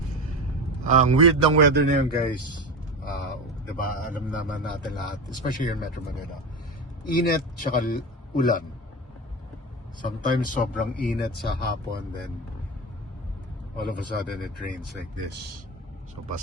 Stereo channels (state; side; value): normal; both; correlation 0.23